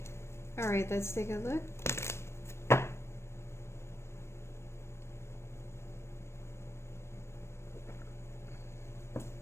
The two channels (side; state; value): right; late; 0.13 ms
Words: Alright, let's take a look.